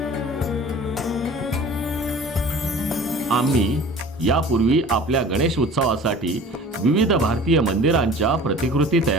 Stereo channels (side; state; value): both; normal; correlation 0.44